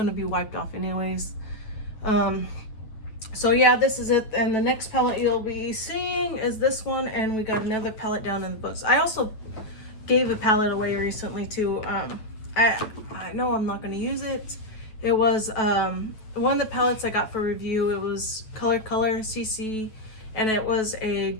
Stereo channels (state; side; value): late; right; 9.2 ms